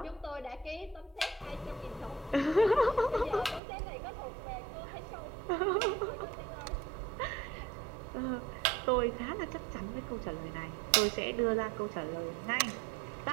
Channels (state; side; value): drops out; left; at 3.6 s